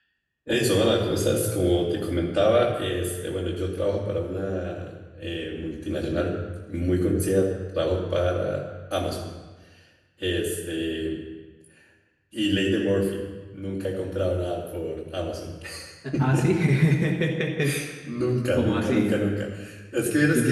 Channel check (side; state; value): both; identical; correlation 1.00